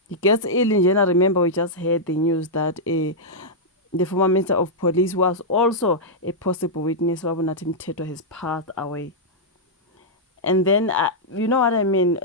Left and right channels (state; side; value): normal; both; correlation -0.08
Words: He gets ill in general. Remember, we just heard the news that the former Minister of Police was also a possible witness. Wabunathi Mthethwa has passed away. And then, you know what I mean?